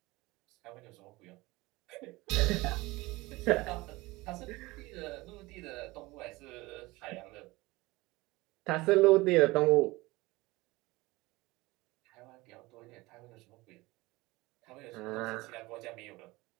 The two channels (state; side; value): quieter; left; 21.2 dB